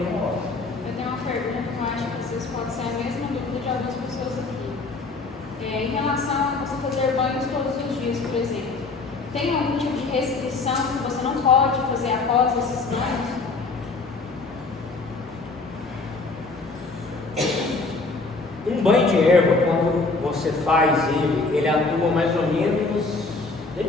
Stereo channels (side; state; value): right; quieter; 3.7 dB